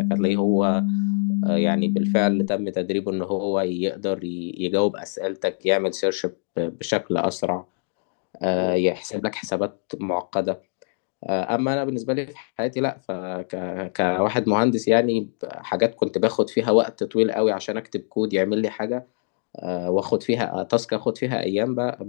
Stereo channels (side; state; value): right; silent; digital silence